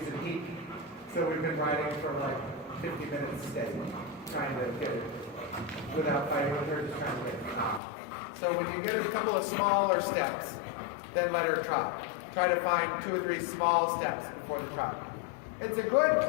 in heat. So we've been riding for like 50 minutes steady, trying to get it without fighting with her, just trying to get it. So when you get a couple of smaller steps, then let her trot. Try to find 2 or 3 small steps before the trot. It's a good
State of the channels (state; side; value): drops out; right; at 7.8 s